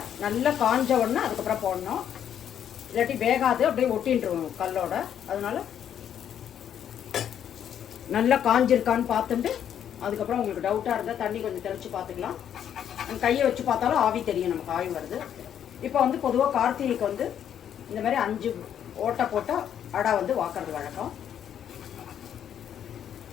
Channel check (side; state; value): right; quieter; 9.4 dB